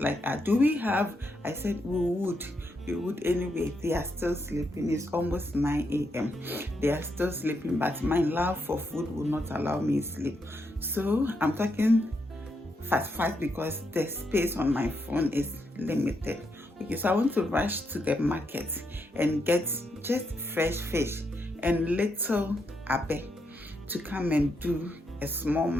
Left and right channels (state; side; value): normal; both; correlation 0.80